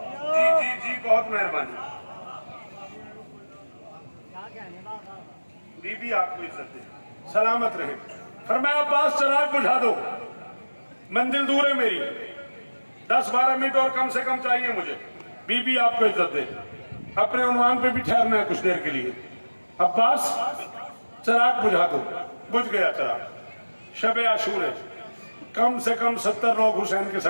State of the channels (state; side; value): inverted; both; correlation -1.00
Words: जी जी जी, बहुत मेहरबानी। बीबी आपको इज्जत दे, सलामत रहे। फरमाया अब्बास चराग बुझा दो, मंजिल दूर है मेरी, 10-12 मिनट और कम से कम चाहिए मुझे। बीबी आपको इज्जत दे। अपने उन्वान पे भी ठहरना है कुछ देर के लिए। अब्बास चराग बुझा दो। बुझ गया चराग। शब आशूर है, कम से कम 70 लोग हुसैन के